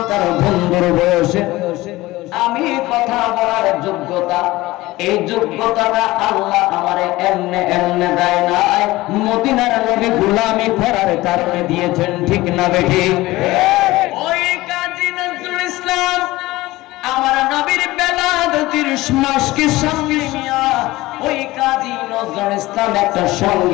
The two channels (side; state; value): right; quieter; 18.8 dB